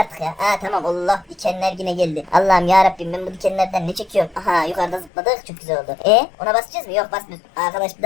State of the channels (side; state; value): right; drops out; at 5.1 s